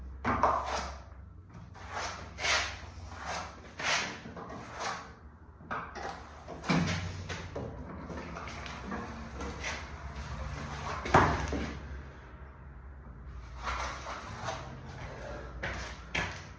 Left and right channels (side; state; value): both; identical; correlation 1.00